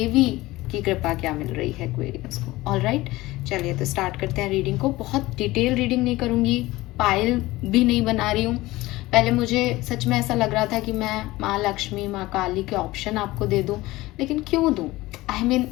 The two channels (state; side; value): quieter; right; 18.9 dB